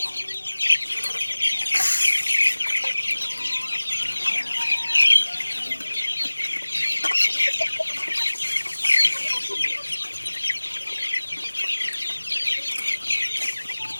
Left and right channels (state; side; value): inverted; both; correlation -1.00